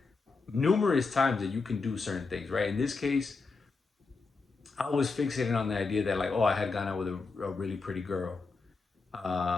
numerous times that you can do certain things, right? In this case, I was fixated on the idea that like, oh, I had gone out with a really pretty girl,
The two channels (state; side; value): quieter; right; 4.2 dB